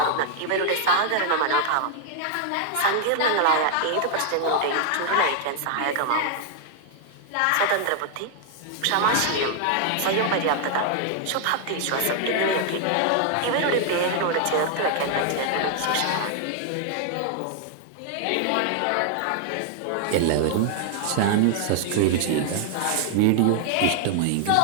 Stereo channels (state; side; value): different; both; correlation 0.00